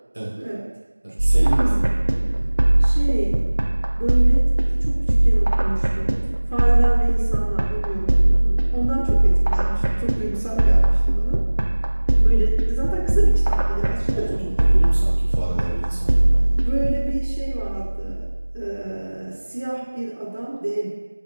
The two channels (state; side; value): inverted; both; correlation -1.00